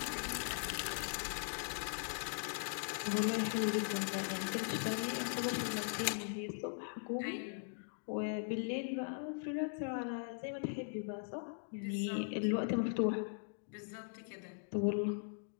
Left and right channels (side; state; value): right; silent; digital silence